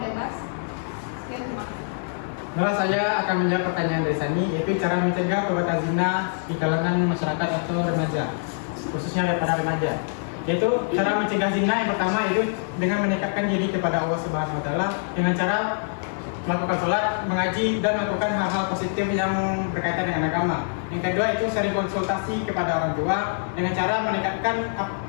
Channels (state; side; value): silent; right; digital silence